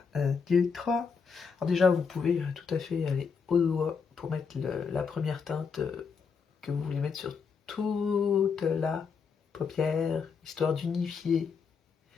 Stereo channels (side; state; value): right; quieter; 5.7 dB